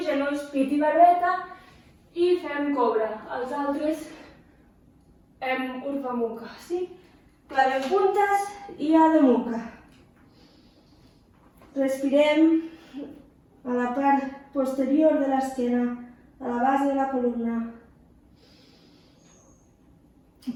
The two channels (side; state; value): both; identical; correlation 1.00